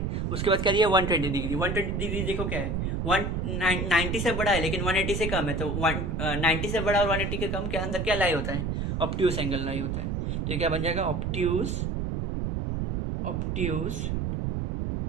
उसके बाद क्या दिया? 120 डिग्री। 120 डिग्री देखो क्या है, 90 से बड़ा है लेकिन 180 से कम है, तो 90 से बड़ा और 180 के कम के अंदर क्या लाई होता है? ऑब्ट्यूस एंगल लाई होता है। तो ये क्या बन जाएगा? ऑब्ट्यूस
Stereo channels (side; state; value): right; noise; rumble, 1 dB below the sound